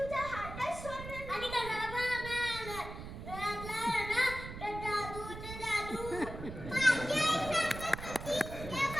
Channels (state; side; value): noise; right; rumble, 10 dB below the sound